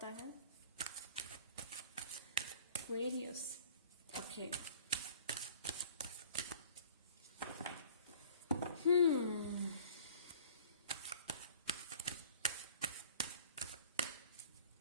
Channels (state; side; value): inverted; both; correlation -0.50